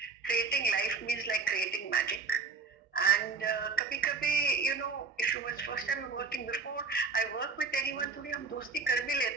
Creating life means like creating magic. And कभी-कभी, if it was first time working, before I work with anyone, थोड़ी हम दोस्ती कर भी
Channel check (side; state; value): left; quieter; 4.8 dB